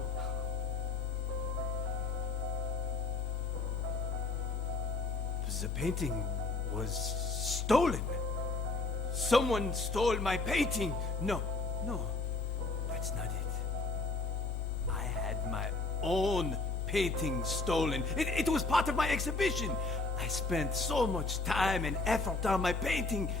The painting was stolen. Someone stole my painting. No, that's not it. I had my own painting stolen. It was part of my exhibition. I spent so much time and effort on my painting.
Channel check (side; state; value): right; quieter; 3.7 dB